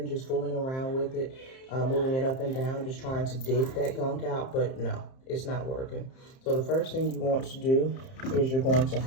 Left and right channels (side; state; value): right; late; 30 ms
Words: just fooling around with it, moving it up and down, just trying to dig that gunk out, but no, it's not working. So the first thing you want to do is you're going to